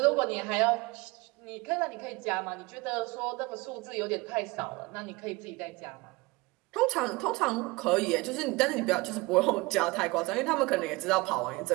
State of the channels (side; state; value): left; quieter; 23.6 dB